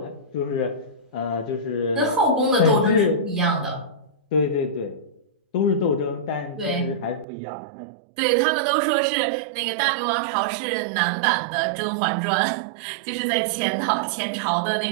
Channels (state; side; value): drops out; left; at 7.2 s